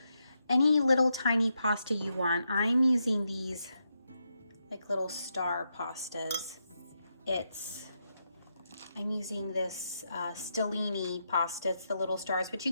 any little tiny pasta you want. I'm using these like little star pastas. I'm using this Stellini pasta. It's the little stars, but you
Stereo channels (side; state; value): both; inverted; correlation -0.83